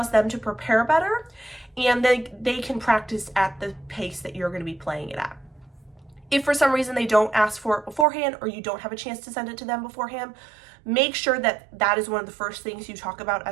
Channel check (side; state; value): left; drops out; at 8.1 s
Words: them to prepare better and they can practice at the pace that you're going to be playing it at. If for some reason they don't ask for it beforehand, or you don't have a chance to send it to them beforehand, make sure that that is one of the first things you talk about